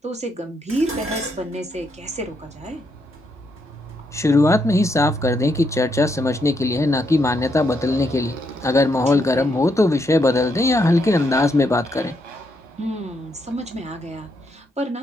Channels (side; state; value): both; normal; correlation 0.78